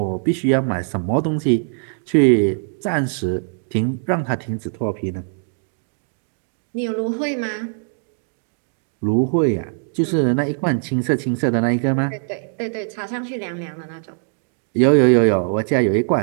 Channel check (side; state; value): left; silent; digital silence